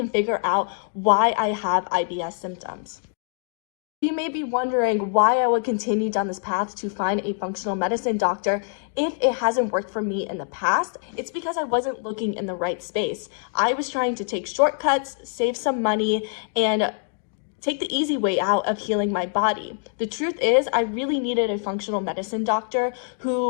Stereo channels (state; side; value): silent; right; 58 dB below the other